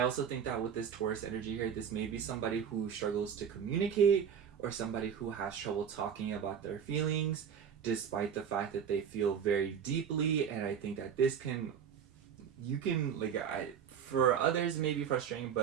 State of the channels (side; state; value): left; quieter; 7.8 dB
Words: also think that with this Taurus energy here, this may be somebody who struggles to communicate or somebody who has trouble talking about their feelings despite the fact that they feel very deeply. And I think that this can, you can, like, for others it may be frustrating,